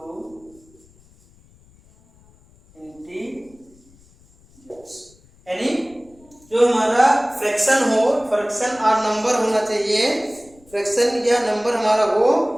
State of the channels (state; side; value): noise; left; rumble, 29 dB below the sound